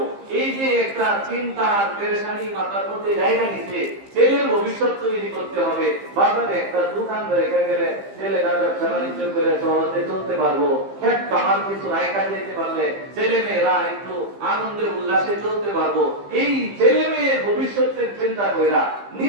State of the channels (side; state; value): left; late; 15 ms